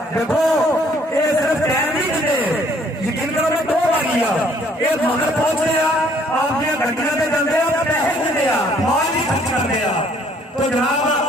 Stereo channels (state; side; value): normal; both; correlation 0.62